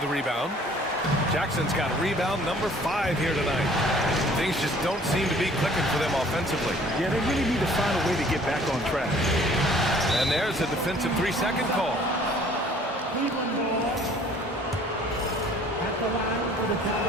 the rebound. Jackson's got rebound number 5 here tonight. Things just don't seem to be clicking for them offensively. Yeah, they really need to find a way to get back on track. And there's a defensive 3-second call.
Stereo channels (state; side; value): normal; both; correlation 0.54